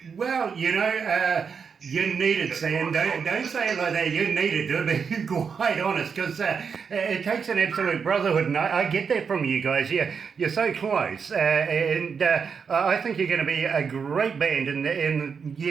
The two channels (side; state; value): left; quieter; 6.1 dB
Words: Well, you know, you need it, Sam. Don't say it like that. You need it, to be quite honest, because it takes an absolute brotherhood, and I get that from you guys. You're so close, and I think you're going to be a great band in